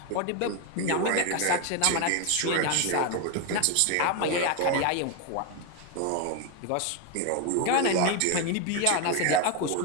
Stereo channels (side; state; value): both; different; correlation 0.01